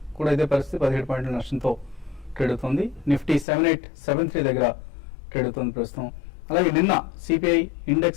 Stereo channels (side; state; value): right; drops out; at 3.5 s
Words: కూడా ఇదే పరిస్థితి, 17 పాయింట్ల నష్టంతో ట్రేడ్ అవుతుంది. నిఫ్టీ 7873 దగ్గర ట్రేడ్ అవుతుంది ప్రస్తుతం. అలాగే నిన్న CPI